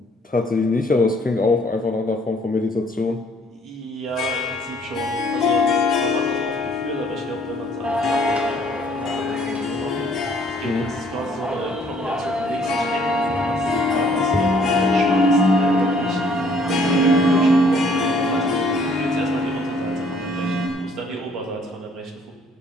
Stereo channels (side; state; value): both; normal; correlation 0.61